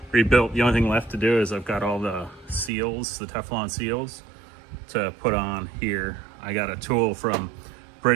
rebuilt. The only thing left to do is I've got all the seals, the Teflon seals, to put on here. I got a tool from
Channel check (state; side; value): drops out; left; at 2.7 s